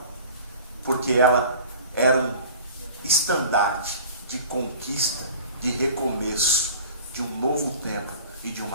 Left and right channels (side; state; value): both; inverted; correlation -0.43